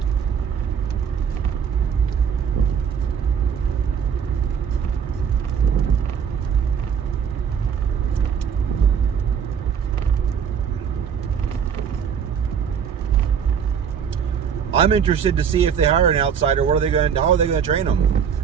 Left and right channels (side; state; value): left; quieter; 7.3 dB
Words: I'm interested to see if they hire an outsider. How are they going to train them?